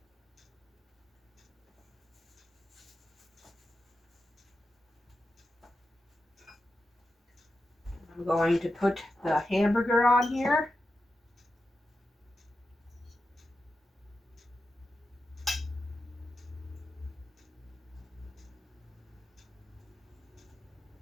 I'm going to put the hamburger on here.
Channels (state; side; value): normal; both; correlation 0.90